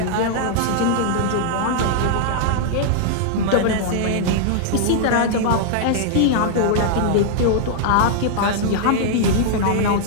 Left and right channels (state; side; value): different; both; correlation -0.01